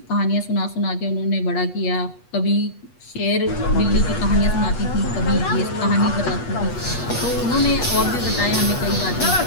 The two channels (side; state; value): right; late; 8.2 ms